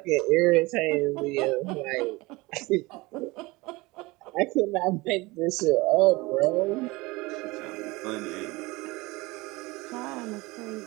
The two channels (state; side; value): quieter; left; 22.6 dB